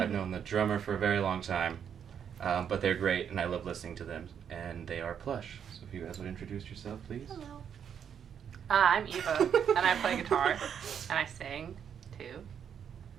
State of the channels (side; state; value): left; quieter; 8.1 dB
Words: known the drummer for a very long time, but they're great and I love listening to them, and they are Plush. So if you guys would introduce yourself, please. Hello. I'm Eva, and I play guitar, and I sing, too.